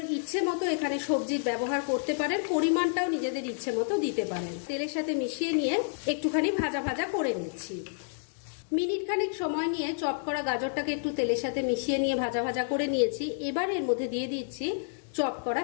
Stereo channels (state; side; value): silent; right; digital silence